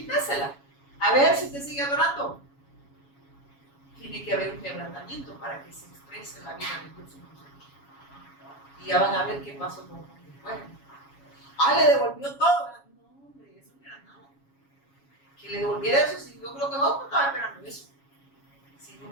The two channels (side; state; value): right; late; 7.2 ms